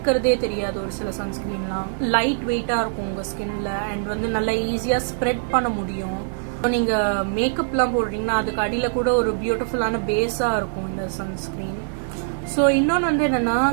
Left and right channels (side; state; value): left; silent; digital silence